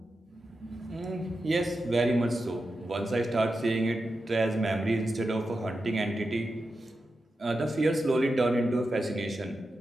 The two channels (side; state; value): both; normal; correlation 0.90